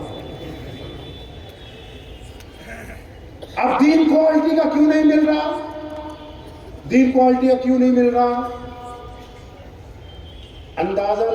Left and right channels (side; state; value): both; identical; correlation 1.00